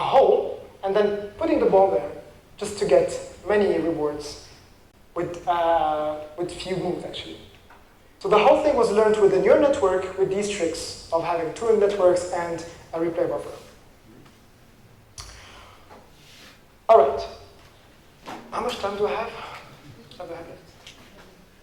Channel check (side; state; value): both; identical; correlation 1.00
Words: and then putting the ball there just to get many rewards with few moves, actually. So the whole thing was learned with a neural network with these tricks of having two networks and a replay buffer. All right. How much time do I have? What do I have left?